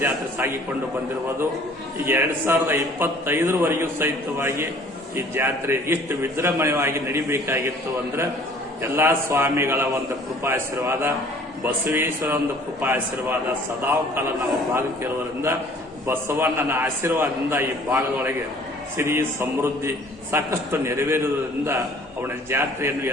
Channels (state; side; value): normal; both; correlation 0.53